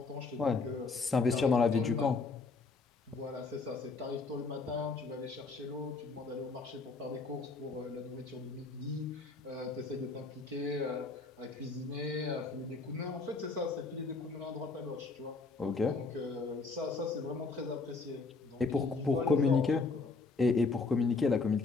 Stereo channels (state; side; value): quieter; right; 4.0 dB